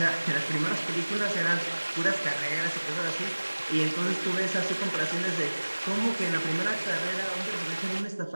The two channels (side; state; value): both; inverted; correlation -1.00